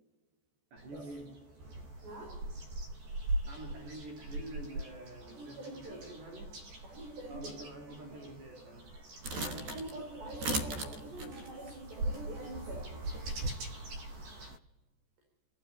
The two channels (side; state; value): left; late; 14 ms